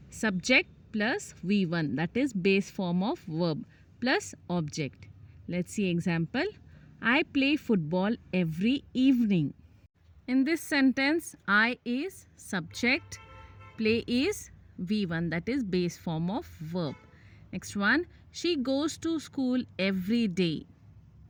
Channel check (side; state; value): both; identical; correlation 1.00